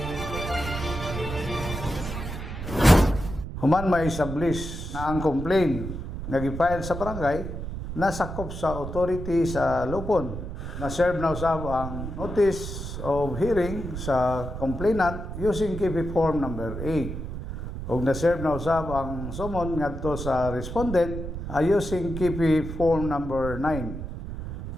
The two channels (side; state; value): right; noise; rumble, 7 dB below the sound